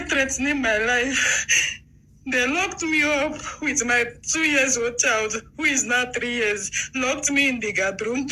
threatening my life. They locked me up with my 2-year-old child, who is now 3 years, locked me in the guard room,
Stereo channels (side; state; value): both; identical; correlation 1.00